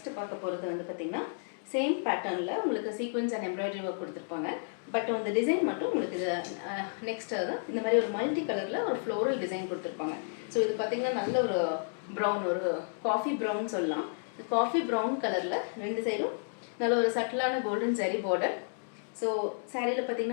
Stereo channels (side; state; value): right; silent; digital silence